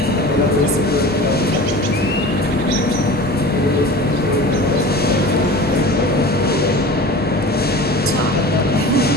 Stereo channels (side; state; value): both; normal; correlation 0.37